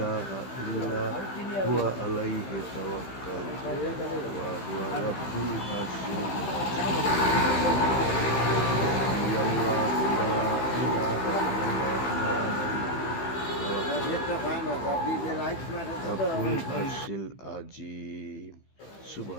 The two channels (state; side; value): late; right; 15 ms